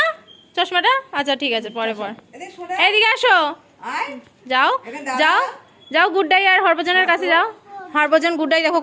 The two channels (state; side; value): identical; both; correlation 1.00